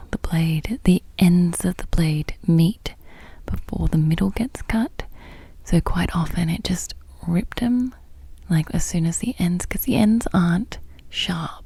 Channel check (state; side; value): identical; both; correlation 1.00